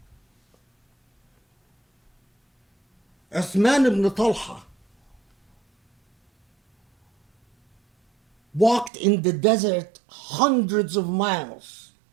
Uthman ibn Talha walked in the desert hundreds of miles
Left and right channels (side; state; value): left; drops out; at 8.9 s